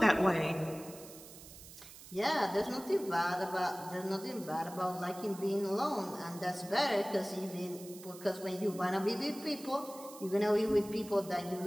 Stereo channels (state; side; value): noise; right; hiss, 17 dB below the sound